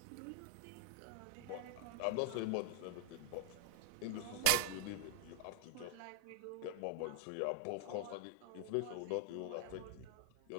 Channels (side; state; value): both; different; correlation 0.00